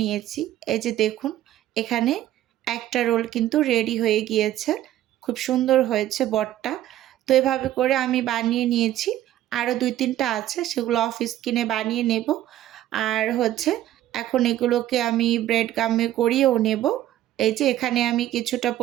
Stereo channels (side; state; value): left; quieter; 13.2 dB